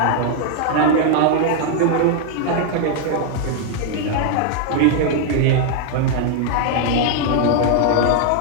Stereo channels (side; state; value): both; different; correlation 0.00